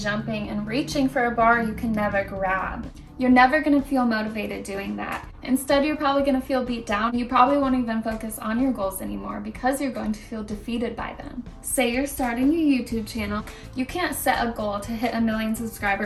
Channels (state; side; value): identical; both; correlation 1.00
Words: reaching for a bar you can never grab. You're never going to feel motivated doing that. Instead, you're probably going to feel beat down. You probably won't even focus on your goals anymore because you're going to feel defeated by them. Say you're starting your YouTube channel. You can't set a goal to hit 1 million